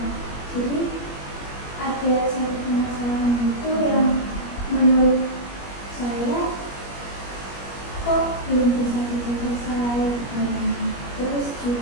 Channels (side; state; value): right; late; 21 ms